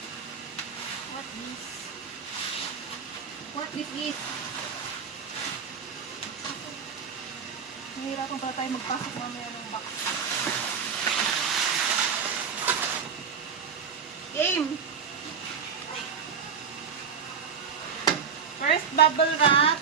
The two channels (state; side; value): quieter; left; 6.5 dB